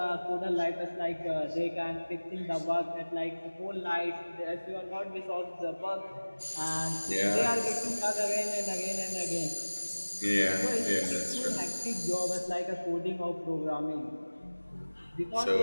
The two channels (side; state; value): both; inverted; correlation -1.00